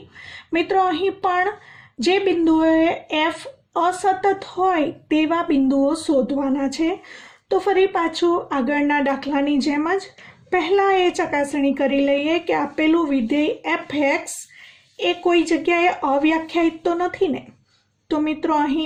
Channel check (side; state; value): both; identical; correlation 1.00